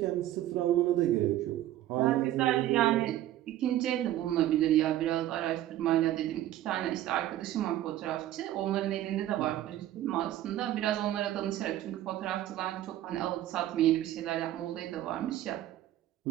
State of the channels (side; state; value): left; quieter; 13.5 dB